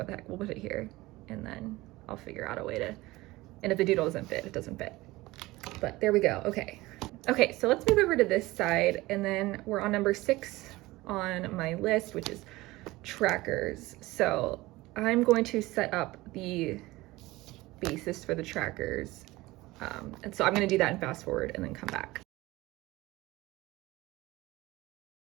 the heck, we'll put it here and then I'll figure out a way to, and if the doodle doesn't fit, it doesn't fit. But there we go. Okay. Okay, so let's move over to this side, and then we're on number 6 on my list, which is trackers. So I'm going to set up the basis for the trackers. And so I'm going to do that and fast forward and then come back.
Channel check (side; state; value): left; quieter; 19.5 dB